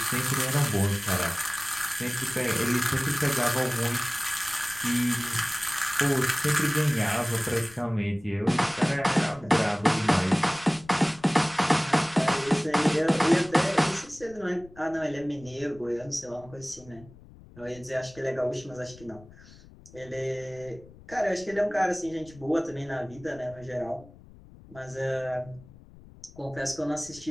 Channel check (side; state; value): left; noise; rumble, 22 dB below the sound